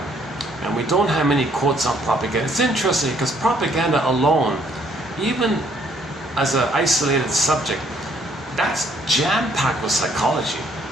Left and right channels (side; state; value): both; normal; correlation 0.65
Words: And we don't have many quotes on propaganda. It's interesting because propaganda alone, even as an isolated subject, that's jam-packed with psychology.